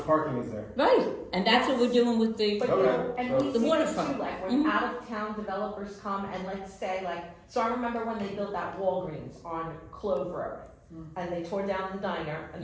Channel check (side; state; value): both; identical; correlation 1.00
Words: parking is there? Right, and that's what we're doing with the, But you know, and we The see this waterfront. too, like when Mhm. out of town developers come and let's say like, so I remember when they built that Walgreens on Clove Road. And they tore down the diner and